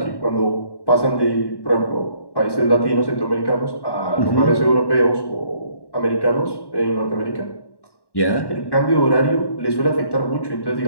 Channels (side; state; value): right; late; 1.1 ms